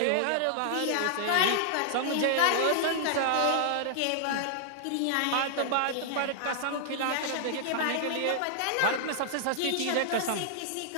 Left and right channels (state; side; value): different; both; correlation -0.01